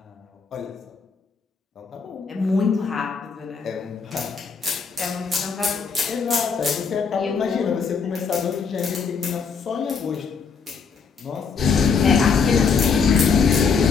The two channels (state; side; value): quieter; right; 5.6 dB